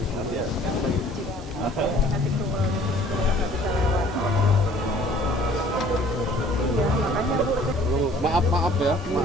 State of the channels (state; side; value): normal; both; correlation 0.54